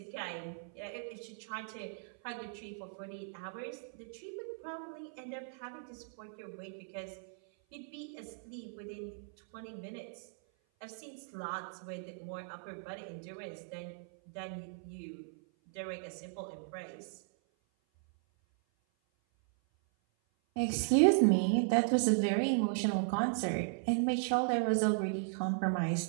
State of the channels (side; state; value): left; silent; 53 dB below the other